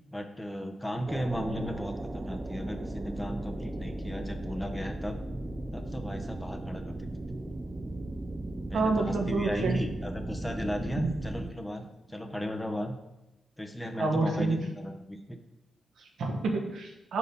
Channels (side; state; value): both; normal; correlation 0.89